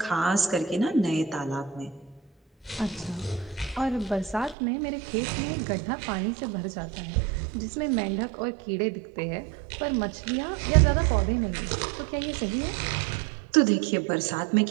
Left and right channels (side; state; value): left; drops out; at 4.5 s